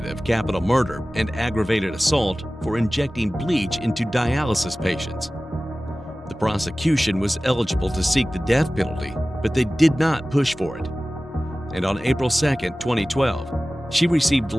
of capital murder and aggravated assault for injecting bleach into dialysis patients. The prosecution was eligible to seek the death penalty, but they did not push for it. And on April 2, 2012, she received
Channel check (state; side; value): normal; both; correlation 0.97